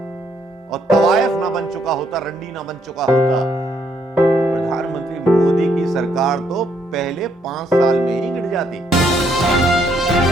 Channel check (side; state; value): both; normal; correlation 0.72